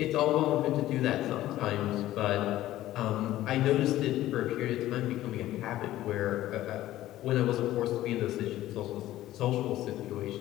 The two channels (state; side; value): quieter; right; 14.6 dB